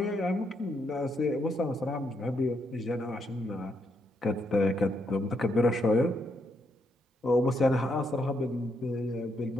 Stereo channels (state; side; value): normal; both; correlation 0.77